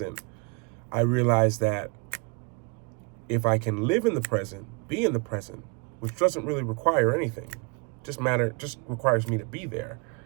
I realize that if I can live in the present, be in the present, which doesn't really require anything, just requires me to be there,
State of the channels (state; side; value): quieter; left; 31.2 dB